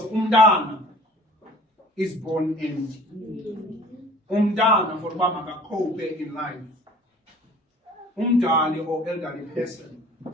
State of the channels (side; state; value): both; normal; correlation 0.48